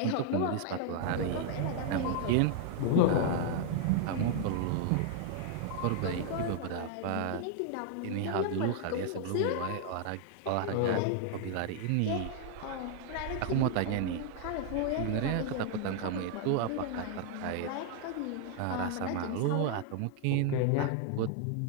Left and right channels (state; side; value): different; both; correlation 0.00